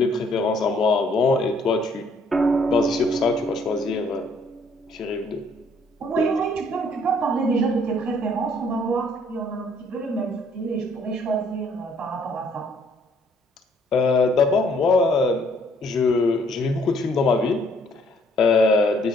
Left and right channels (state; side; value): normal; both; correlation 0.64